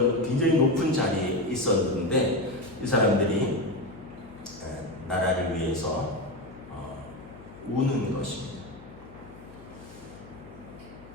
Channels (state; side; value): noise; left; hum, 19 dB below the sound